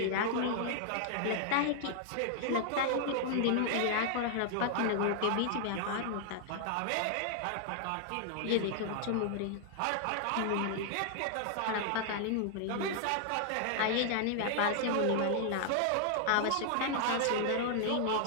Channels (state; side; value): different; both; correlation -0.01